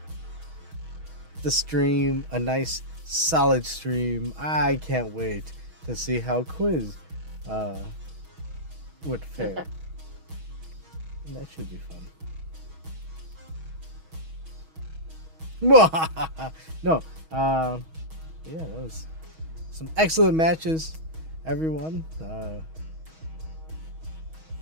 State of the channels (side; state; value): left; late; 6.3 ms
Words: stream a nice solid stream. I can't wait to see how Quiz would fare. That should be fun. No, yeah, that was some excellent matches, everyone. Damn,